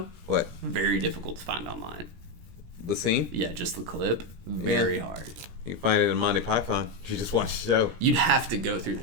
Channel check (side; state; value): left; late; 17 ms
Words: What? Very difficult to find online. The scene? Yeah, just the clip. Very hard. You can find it in Monty Python. You just watch the show. You'd have to go through